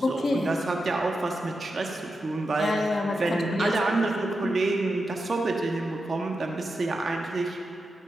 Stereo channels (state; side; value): normal; both; correlation 0.89